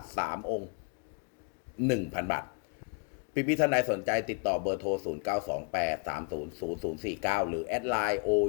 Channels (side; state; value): right; quieter; 37.7 dB